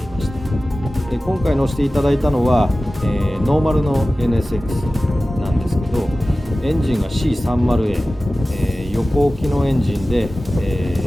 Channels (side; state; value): both; normal; correlation 0.96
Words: いました。で今回乗せていただいたのは、ノーマルの NSX なんですけど、エンジンが C30A、横置きのエンジンで、ウ